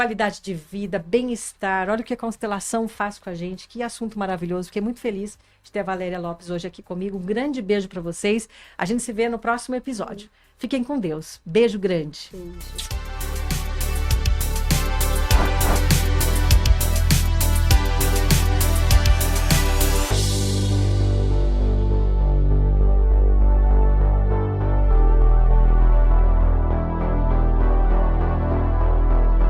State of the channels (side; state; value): both; identical; correlation 1.00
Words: de vida, bem-estar. Olha o que a constelação faz com a gente. Que assunto maravilhoso. Fiquei muito feliz de ter a Valéria Lopes hoje aqui comigo. Um grande beijo para vocês. A gente se vê no próximo episódio. Fiquem com Deus. Beijo grande. Beijo.